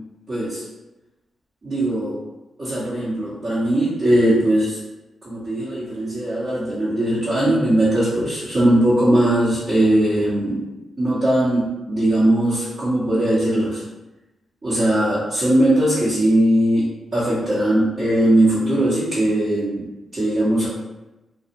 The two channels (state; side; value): normal; both; correlation 0.87